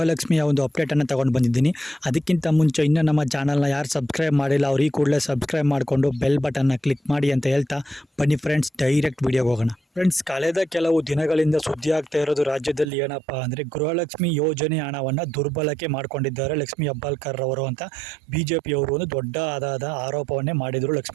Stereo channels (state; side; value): drops out; left; at 12.9 s